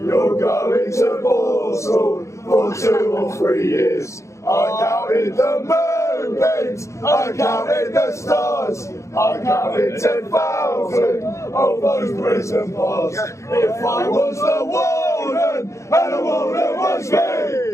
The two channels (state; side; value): late; right; 0.14 ms